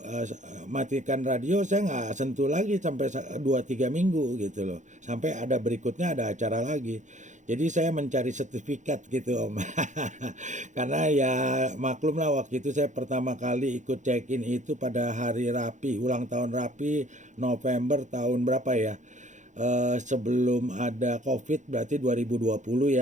matikan radio, saya nggak sentuh lagi sampai 2-3 minggu gitu loh, sampai ada berikutnya ada acara lagi. Jadi saya mencari sertifikat gitu Om. Karena ya maklum lah waktu itu saya pertama kali ikut check in itu pada hari Rapi, ulang tahun Rapi November tahun berapa ya. Sebelum ada COVID berarti 2020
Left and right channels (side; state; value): left; late; 0.35 ms